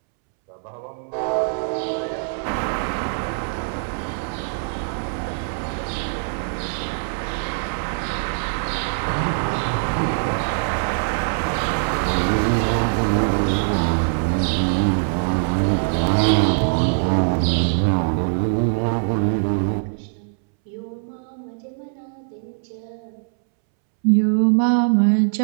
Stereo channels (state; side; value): silent; left; 64 dB below the other